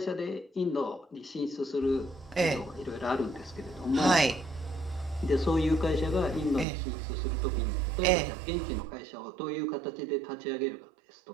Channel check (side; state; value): left; drops out; at 6.7 s